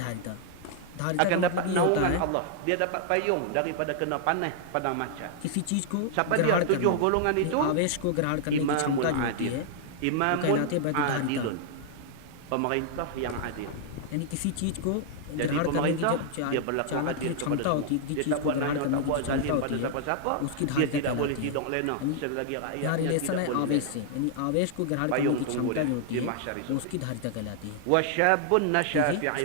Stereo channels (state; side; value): different; both; correlation -0.01